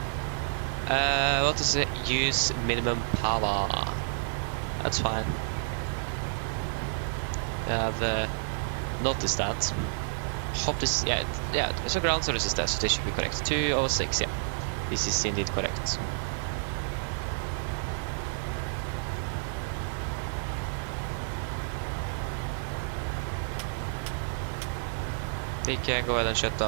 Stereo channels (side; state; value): left; silent; digital silence